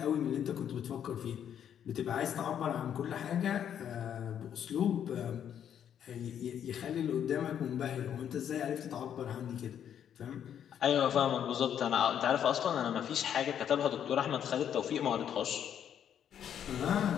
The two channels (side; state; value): right; quieter; 9.3 dB